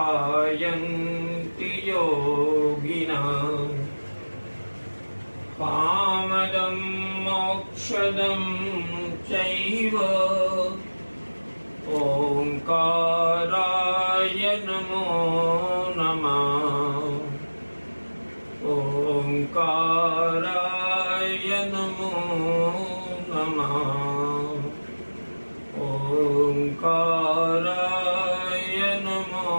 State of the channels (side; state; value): both; inverted; correlation -1.00